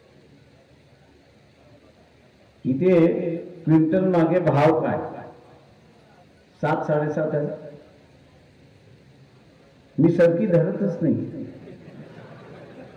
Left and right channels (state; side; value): identical; both; correlation 1.00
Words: इथे क्विंटल मागे भाव काय? 7-7.5 आहे. मी सरकी धरतच नाही.